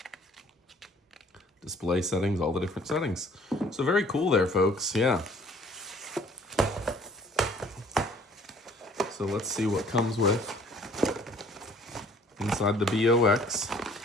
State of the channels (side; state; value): both; normal; correlation 0.55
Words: Display settings, all the different settings. So very cool there, folks. Yeah. So let's see what comes with inside the BOX.